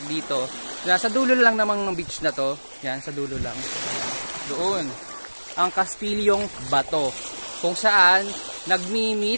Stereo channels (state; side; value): inverted; both; correlation -1.00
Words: dito. Nasa dulo lang namang ng beach na to. Yan, sa dulo lang. Doon. Ang Kastilyong Bato. Kung saan